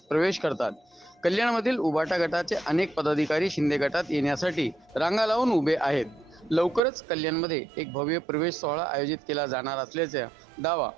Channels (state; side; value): drops out; left; at 6.8 s